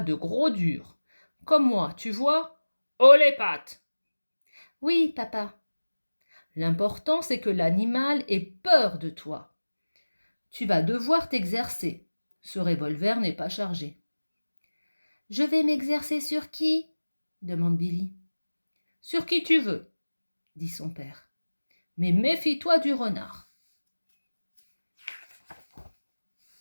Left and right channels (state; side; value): inverted; both; correlation -1.00